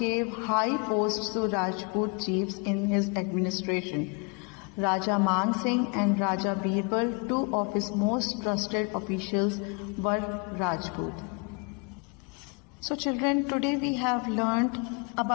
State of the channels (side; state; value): right; quieter; 31.9 dB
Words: high posts to Rajput chiefs in his administration. Raja Man Singh and Raja Birbal, two of his most trusted officials, were Rajput. So children, today we have learned